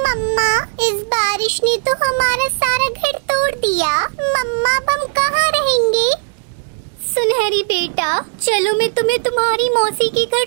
मम्मा, इस बारिश ने तो हमारा सारा घर तोड़ दिया। मम्मा, अब हम कहाँ रहेंगे? सुनहरी बेटा, चलो मैं तुम्हें तुम्हारी मौसी के घर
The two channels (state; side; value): silent; left; digital silence